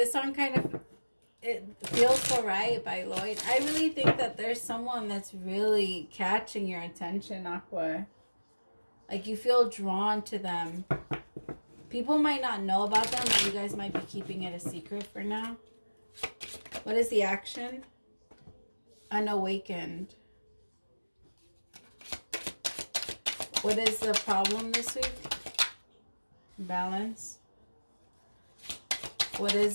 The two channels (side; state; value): both; inverted; correlation -1.00